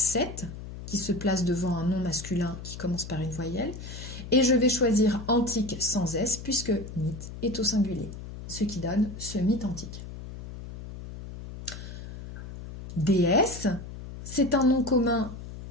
qui se place devant un nom masculin qui commence par une voyelle. Et je vais choisir antique sans S, puisque mythe est au singulier, ce qui donne ce mythe antique. Déesse, c'est un nom commun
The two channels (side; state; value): left; noise; hum, 11 dB below the sound